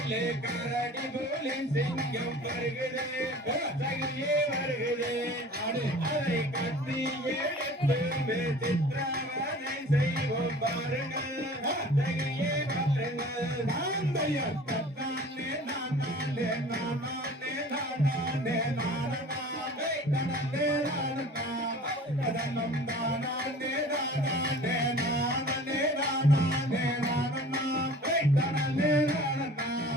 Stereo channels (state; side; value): normal; both; correlation 0.44